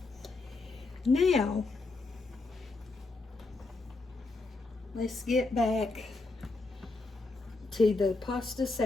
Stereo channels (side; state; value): right; quieter; 3.4 dB